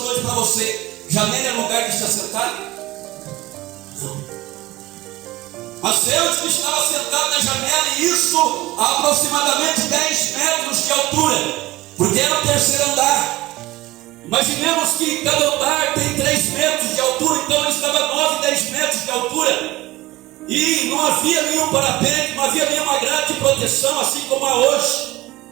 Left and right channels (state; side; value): quieter; left; 18.5 dB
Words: para você: janela é lugar de se assentar? Não. Mas Eutico estava sentado na janela, e isso a aproximadamente 10 metros de altura, porque era o terceiro andar. Imaginemos que cada andar tem 3 metros de altura, então ele estava 9, 10 metros de altura. E não havia nenhum parapeito, não havia nenhuma grade de proteção, assim como há hoje.